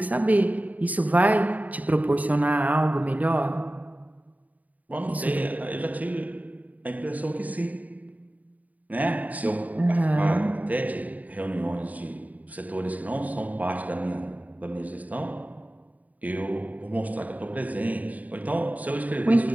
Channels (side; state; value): left; late; 0.075 ms